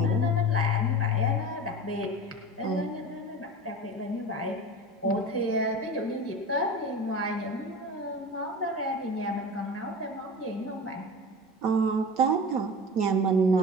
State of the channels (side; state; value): both; normal; correlation 0.32